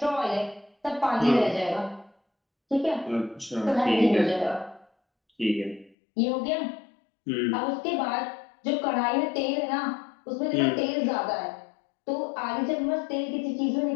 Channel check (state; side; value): drops out; right; at 6.0 s